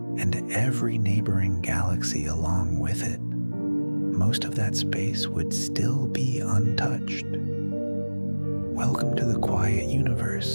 every neighboring galaxy along with it, most of that space would still be untouched. Welcome to the quiet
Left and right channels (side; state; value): both; inverted; correlation -1.00